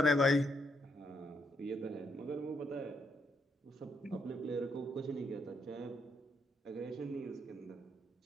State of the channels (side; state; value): both; normal; correlation 0.76